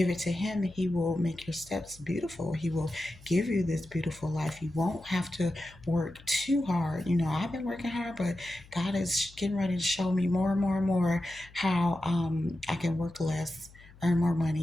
it to Him. He will make your steps beautiful. He will give you this beautiful life. You won't have to work too hard. I've been working hard, but God is getting ready to show me more and more and more how I can work less, earn more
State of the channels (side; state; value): left; noise; hum, 23 dB below the sound